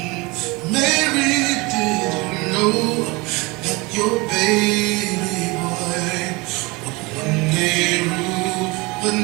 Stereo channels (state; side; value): quieter; left; 25.0 dB